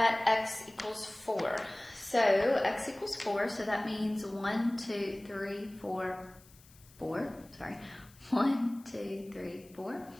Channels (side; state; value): left; noise; hiss, 25 dB below the sound